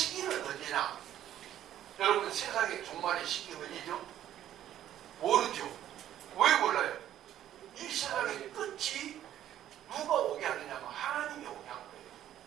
언제냐? 여러분 세상의 종말의 시기 언제죠? 모르죠. 왜 몰라요? 이 세상의 끝이 누가 오게 하느냐면 하나님이 오게 한 거예요.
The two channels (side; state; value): left; quieter; 11.7 dB